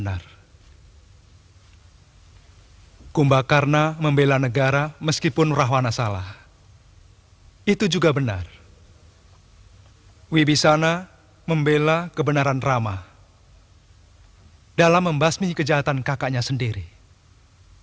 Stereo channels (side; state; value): both; identical; correlation 1.00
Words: Kumbakarna membela negara meskipun Rahwana salah. Itu juga benar. Wibisana membela kebenaran Rama dalam membasmi kejahatan kakaknya sendiri.